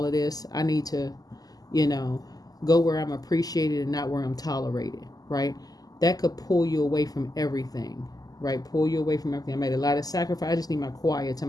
of this. I need to, go where I'm appreciated and not where I'm tolerated, right? That could pull you away from everything, right? Pull you away from everything. I made a lot of sacrifice. I just need my quiet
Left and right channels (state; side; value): late; right; 0.18 ms